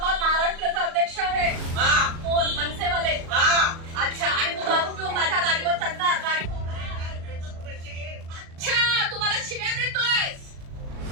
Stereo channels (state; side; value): late; left; 37 ms